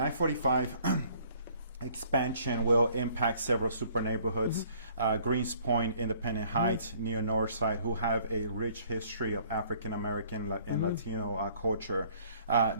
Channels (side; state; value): both; inverted; correlation -0.59